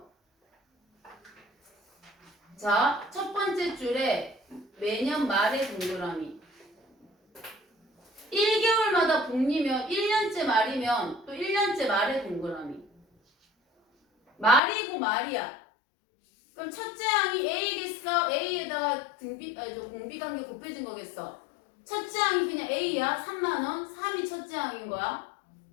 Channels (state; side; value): drops out; right; at 14.6 s